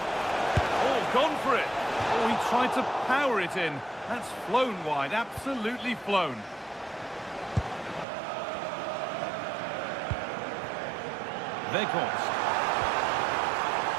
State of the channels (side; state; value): left; drops out; at 8.1 s